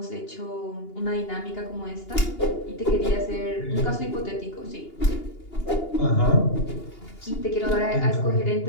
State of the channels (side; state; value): right; late; 2.8 ms